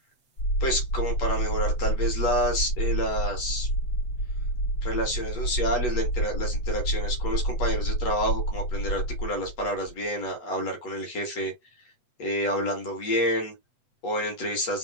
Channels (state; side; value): late; right; 8.1 ms